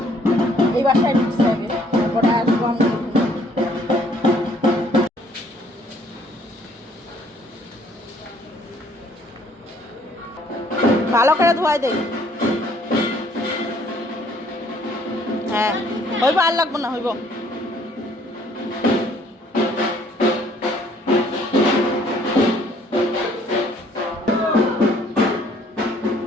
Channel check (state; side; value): normal; both; correlation 0.62